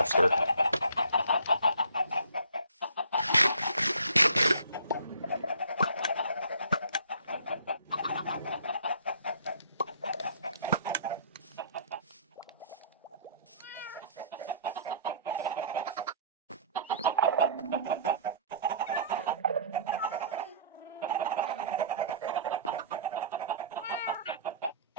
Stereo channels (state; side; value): inverted; both; correlation -0.51